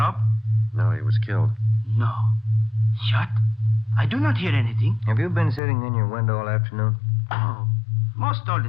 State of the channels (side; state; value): right; drops out; at 5.6 s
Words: No, he was killed. No. Shot? I do not hear anything. Have you been sitting in your window all afternoon? Oh, most all